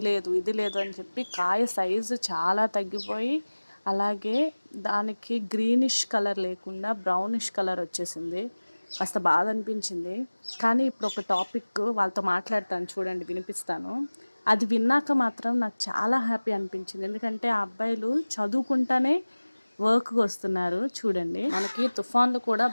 లేదు ఇది లేదు అని చెప్పి కాయ సైజు చాలా తగ్గిపోయి, అలాగే దానికి గ్రీనిష్ కలర్ లేకుండా బ్రౌనిష్ కలర్ వచ్చేసింది. కాస్త బాధ అనిపించింది. కానీ ఇప్పుడు ఒక టాపిక్ వాళ్ళతో మాట్లాడతాను, చూడండి, వినిపిస్తాను. అది విన్నాక మాత్రం నాకు చాలా హ్యాపీ అనిపించింది. ఎందుకంటే ఆ అబ్బాయిలు చదువుకుంటానే వర్క్కి వస్తున్నారు. చూడండి, మనకి తుఫాన్లు కూడా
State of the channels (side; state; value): both; inverted; correlation -1.00